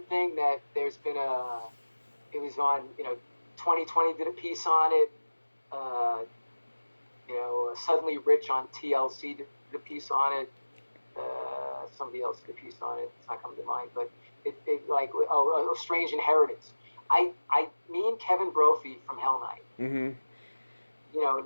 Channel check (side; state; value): both; inverted; correlation -1.00